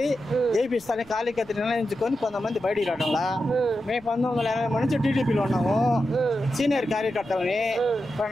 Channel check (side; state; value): right; noise; rumble, 25 dB below the sound